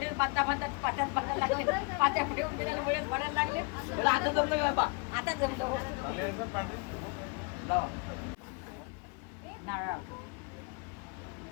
बांधता बांधता पाट्यात बांधायला लागले, पाट्या पुढे उभे त्याला बडेच पडायला लागले. आता जमलं का बा आता जमलो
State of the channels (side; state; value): right; quieter; 31.4 dB